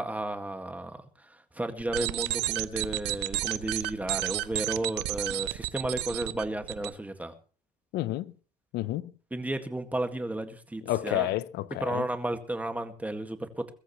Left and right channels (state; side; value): normal; both; correlation 0.51